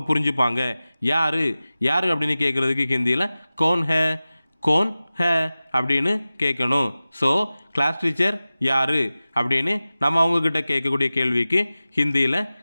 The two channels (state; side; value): inverted; both; correlation -0.96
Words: புரிஞ்சுப்பாங்க. யார் யார் அப்படின்னு கேட்குறதுக்கு ஹிந்தியில் கோன் ஹே, கோன் ஹே அப்படின்னு கேட்கணும். ஸோ கிளாஸ் டீச்சர் யார் அப்படின்னு நம்ம அவங்கக்கிட்ட கேட்கக்கூடிய கேள்விக்கு ஹிந்தியில்